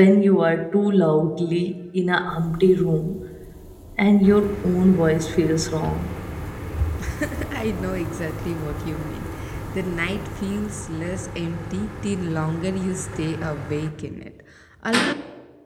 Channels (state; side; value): identical; both; correlation 1.00